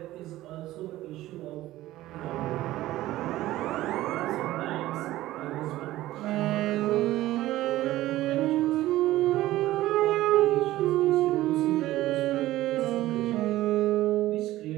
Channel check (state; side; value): quieter; left; 15.8 dB